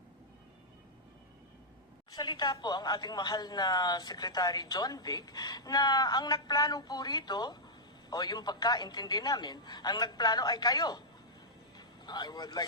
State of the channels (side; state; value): both; normal; correlation -0.09